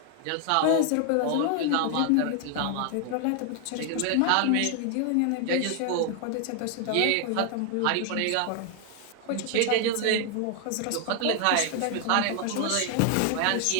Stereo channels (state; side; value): different; both; correlation 0.00